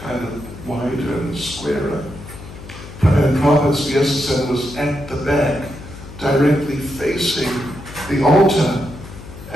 of wider and squarer. And Prabhupada's Vyasasana was at the back, directly facing the altar.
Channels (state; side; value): noise; left; hum, 15 dB below the sound